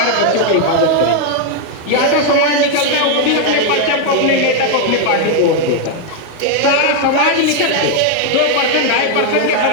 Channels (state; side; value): different; both; correlation 0.01